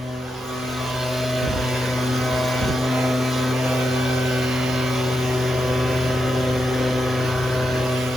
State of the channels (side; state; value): both; normal; correlation 0.85